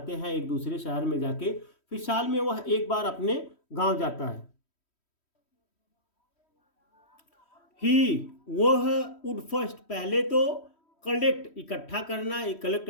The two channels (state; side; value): late; right; 3.1 ms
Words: हैं एक दूसरे शहर में जाके, फिर साल में वह एक बार अपने गांव जाता है। ही वह वुड फर्स्ट पहले तो, कलेक्ट इकट्ठा करना, कलेक्ट